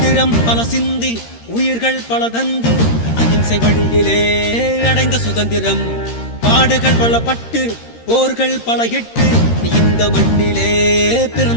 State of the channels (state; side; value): late; right; 13 ms